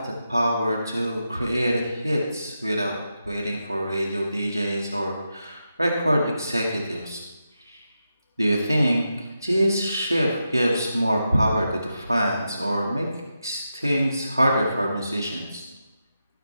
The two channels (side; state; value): both; inverted; correlation -0.87